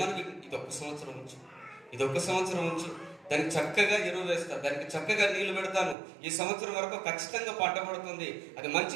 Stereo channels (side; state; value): left; drops out; at 6.0 s